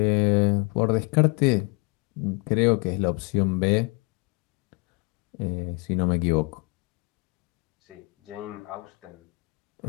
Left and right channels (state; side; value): quieter; right; 29.3 dB